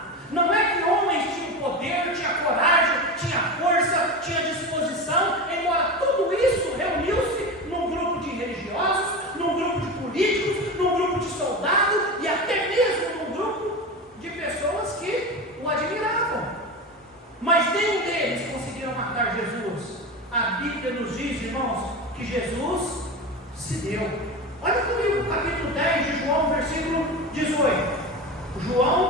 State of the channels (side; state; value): both; normal; correlation 0.24